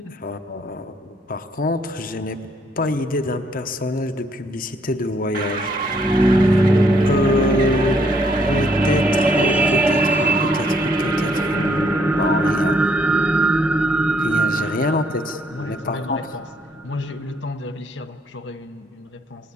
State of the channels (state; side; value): normal; both; correlation 0.69